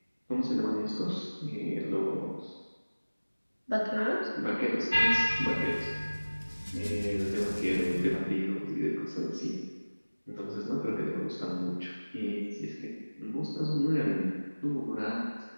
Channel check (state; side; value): inverted; both; correlation -1.00